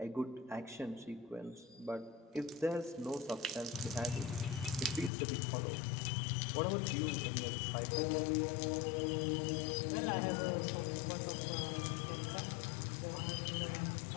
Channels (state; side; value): drops out; right; at 5.1 s